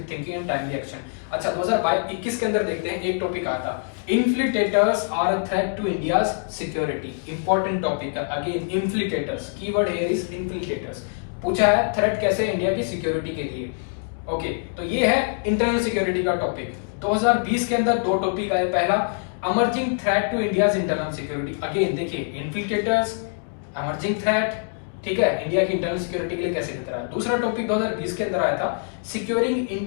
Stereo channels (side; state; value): right; silent; digital silence